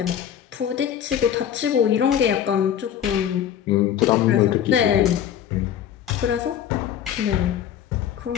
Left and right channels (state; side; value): quieter; right; 9.8 dB